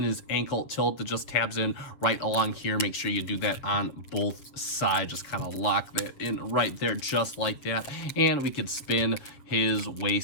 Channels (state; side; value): late; right; 7.6 ms